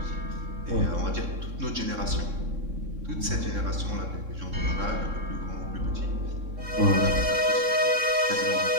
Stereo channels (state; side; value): late; left; 3.6 ms